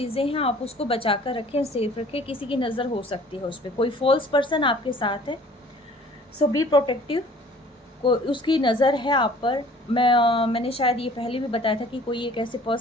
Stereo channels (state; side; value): normal; both; correlation 0.51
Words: हैं, आप उसको बचा कर रखें, सेफ रखें। किसी की नज़र हो सकती है उस पर, कोई फॉल्स पर्सन आपके साथ है, सो बी प्रोटेक्टिव। को उसकी नज़र है आप पर। मैंने शायद ये पहले भी बताया था कि कोई एक ऐसे